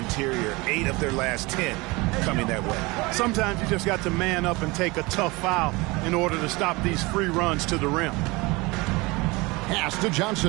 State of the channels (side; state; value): left; quieter; 23.9 dB